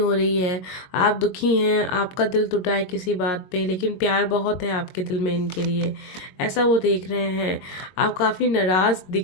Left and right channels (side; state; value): right; late; 22 ms